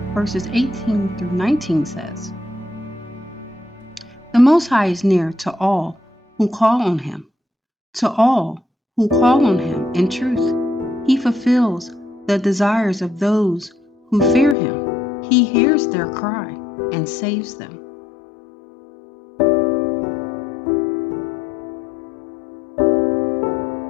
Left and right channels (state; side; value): drops out; right; at 14.6 s